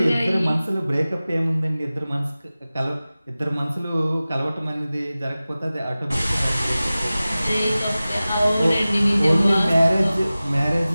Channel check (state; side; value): inverted; both; correlation -0.97